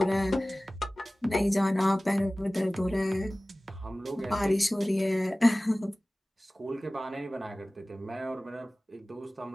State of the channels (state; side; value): normal; both; correlation 0.98